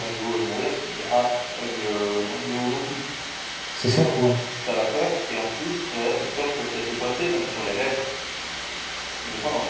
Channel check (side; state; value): both; identical; correlation 1.00